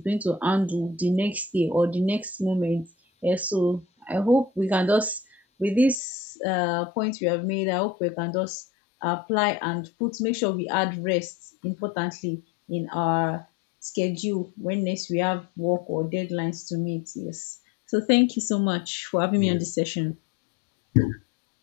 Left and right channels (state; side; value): drops out; right; at 6.0 s